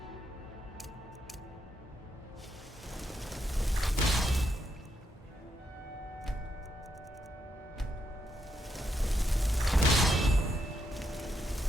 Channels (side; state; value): both; normal; correlation 0.80